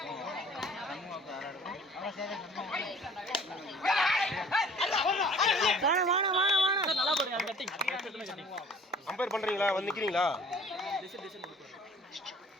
கம்பேர் பண்றீங்களா? வந்து நிக்கிறீங்களா?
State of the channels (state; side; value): normal; both; correlation 0.50